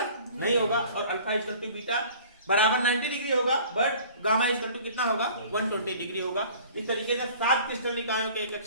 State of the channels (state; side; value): inverted; both; correlation -0.48